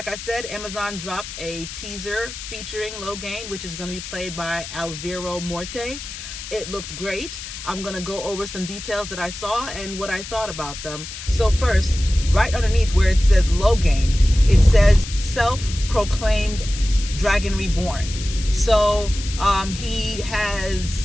I said, Amazon dropped a teaser featuring Logain, which is going to be played by Alvaro Morte. It looked great. I'm going to go over some details that I saw and what I thought about them. So first, right underneath where it says Logain, it says self-proclaimed Dragon Reborn. So he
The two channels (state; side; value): noise; left; hiss, 10 dB below the sound